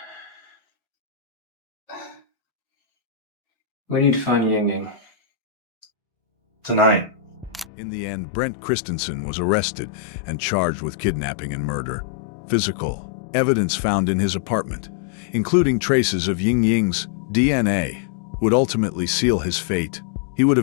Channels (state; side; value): drops out; right; at 7.7 s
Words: We need to find Ying Ying. Tonight. In the end, Brent Christensen was arrested and charged with kidnapping and murder. Physical evidence found in his apartment, including traces of Ying Ying's DNA, would ultimately seal his fate. He would